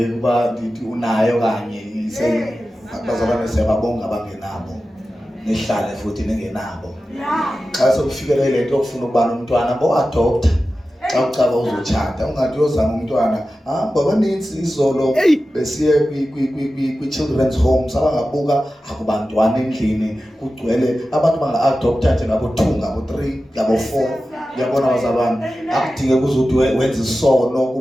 ukuba ndithi unayo kanye bazalwane siyababonga abangenabo. Nihlale futhi ningenabo. Xa sekufikele le nto yokufuna ukuba nomntwana bo-adopta. Xa ucaba uzotshata ungathi uyozama umntwana. Babanintsi izolo besiye kwi-children's homes abangabuka akubantwana endlini kugcwele abantu banga-adopta nje ngabo-2 ngabo-3 ngabo-4. Uyabona bazalwane akudingeki uzuthi wenze isono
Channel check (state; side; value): normal; both; correlation 0.94